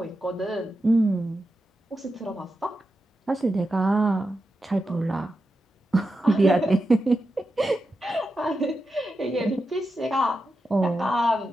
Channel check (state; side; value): normal; both; correlation 0.89